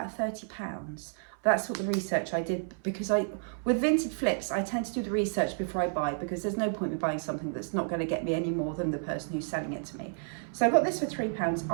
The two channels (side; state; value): left; silent; 57 dB below the other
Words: £30. That's what the research I did, because with Vinted flips, I tend to do the research before I buy, because there's no point in buying something that's not going to get me any more than the person who's selling it to me. So I got this for £3.